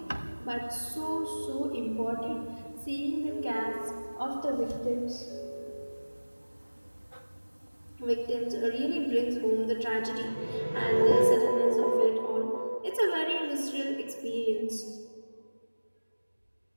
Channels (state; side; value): inverted; both; correlation -1.00